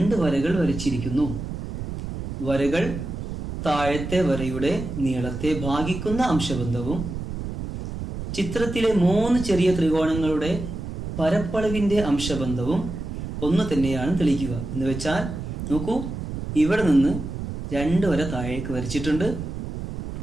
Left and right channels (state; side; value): noise; right; rumble, 7 dB below the sound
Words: വരകൾ വരച്ചിരിക്കുന്നു. വരകൾ താഴത്തെ വരയുടെ നീളത്തെ ഭാഗിക്കുന്ന അംശബന്ധവും ചിത്രത്തിലെ 3 ചെറിയ ത്രികോണങ്ങളുടെ പരപ്പളവിന്റെ അംശബന്ധവും ഒന്ന് തന്നെയാണ് തെളിയിക്കുക. എന്ന് വെച്ചാൽ നോക്കൂ, ഇവിടെ നിന്ന് 2 വര താഴേക്ക് വരച്ചിട്ടുണ്ട്.